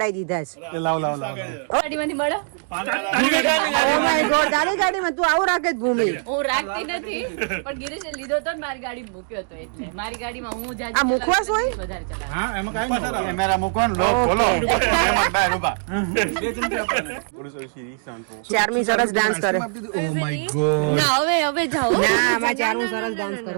દીધા છે. એ લાવ લાવ લાવ. ગાડીમાંથી મળે ઓ માય ગોડ. તારી ગાડીમાં તું આવું રાખે જ ભૂમિ. હું રાખતી નથી પણ ગિરીશે લીધો તો ને મારી ગાડી મૂક્યો હતો એટલે મારી ગાડીમાં હું જાજી આ મુખવાસ હોય? વધારે ચલાવું. હા એમાં કાંઈ નહીં. કેમેરા મૂકો ને લોક ખોલો. એમાં બહાર ઊભા. ચારમી સરસ ડાન્સ કરે. Oh my God. હવે જાઓ ના આમાં ચારું સરસ ડાન્સ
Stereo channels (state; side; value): silent; left; 59 dB below the other